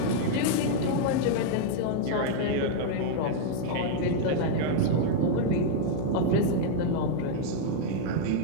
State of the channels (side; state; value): both; different; correlation -0.01